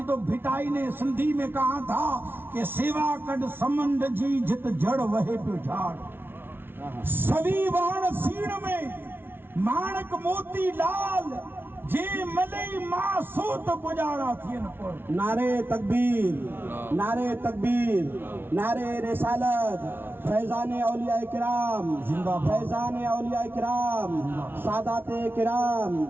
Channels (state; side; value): late; left; 0.11 ms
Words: تو بھٹائی نے سندھی میں کہا تھا کہ سیوا کڈ سمند جی جت جڑ وہے پہ جھاڑ، سوی وان سین میں مانک موتی لال، جے ملئی ماں سوت گزارا تھین پر۔ نعرے تکبیر، نعرے تکبیر، نعرے رسالت، فیضان اولیاء کرام، فیضان اولیاء کرام، سادات کرام،